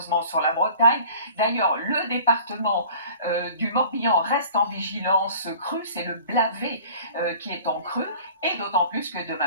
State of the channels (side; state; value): both; inverted; correlation -0.46